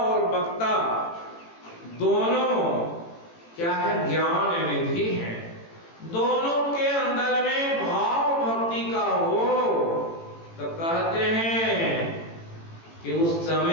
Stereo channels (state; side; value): late; right; 18 ms